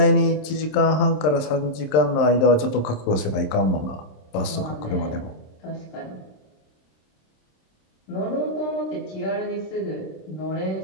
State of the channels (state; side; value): late; right; 27 ms